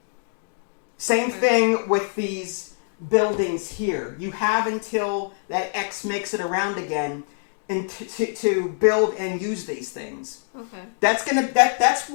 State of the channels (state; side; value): silent; right; 62 dB below the other